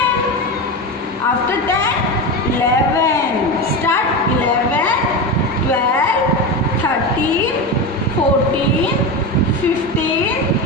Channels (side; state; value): both; normal; correlation 0.20